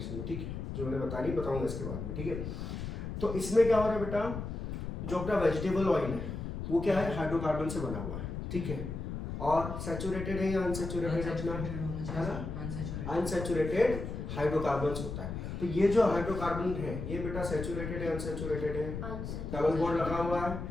में, ठीक है, जो मैंने बताऊंगा इसके बाद में, ठीक है। तो इसमें क्या हो रहा है बेटा, जो अपना वेजिटेबल ऑयल है वो क्या है, हाइड्रोकार्बन से बना हुआ है, ठीक है, और सैचुरेटेड है या अनसैचुरेटेड अपना है ना, अनसैचुरेटेड हाइड्रोकार्बन्स होता है। तो ये जो हाइड्रोकार्बन है ये बेटा सैचुरेटेड है अनसैचुरेटेड है, डबल बॉन्ड लगा हुआ है,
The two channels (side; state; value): left; noise; rumble, 5 dB below the sound